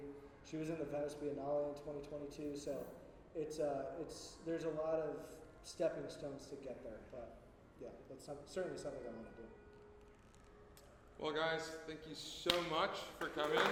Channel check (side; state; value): both; identical; correlation 1.00